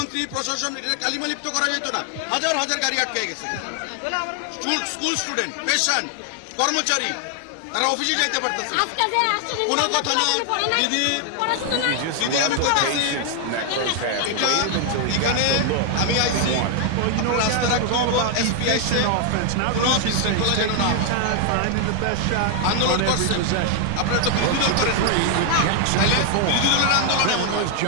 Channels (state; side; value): different; both; correlation 0.00